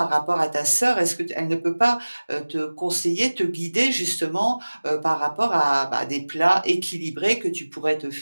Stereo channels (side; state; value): both; inverted; correlation -1.00